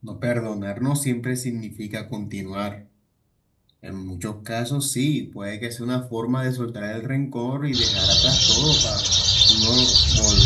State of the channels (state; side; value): identical; both; correlation 1.00